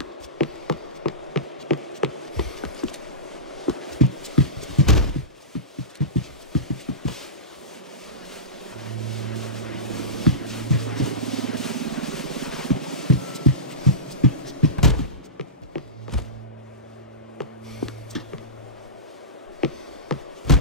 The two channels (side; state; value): both; normal; correlation -0.15